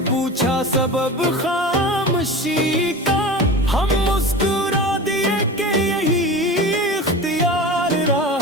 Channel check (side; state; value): both; normal; correlation 0.32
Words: پوچھا سبب خاموشی کا، ہم مسکرا دیے کہ یہی اختیار